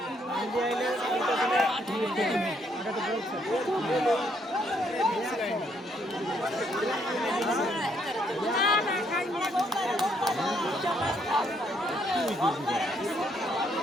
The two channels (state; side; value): normal; both; correlation 0.71